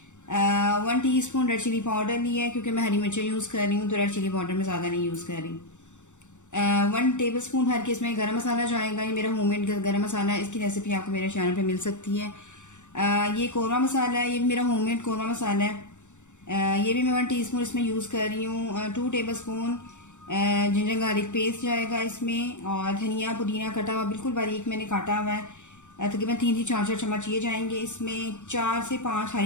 1 teaspoon red chilli powder लिया है, क्योंकि मैं हरी मिर्चें यूज़ कर रही हूँ तो रेड चिली पाउडर में ज़्यादा नहीं यूज़ कर रही। 1 टेबलस्पून भर के इसमें गरम मसाला जाएगा। ये मेरा होममेड गरम मसाला है, इसकी रेसिपी आपको मेरे चैनल पे मिल सकती है। ये कोरमा मसाला है, ये मेरा होममेड कोरमा मसाला है। ये भी मैं 1 टीस्पून इसमें यूज़ कर रही हूँ। 2 टेबलस्पून जिंजर गार्लिक पेस्ट जाएगा इसमें, और धनिया पुदीना कटा हुआ बिल्कुल बारीक मैंने काटा हुआ है। तकरीबन 3 से 4 चम्मच ये जाएंगे इसमें। 4 से 5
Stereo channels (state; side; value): late; right; 0.84 ms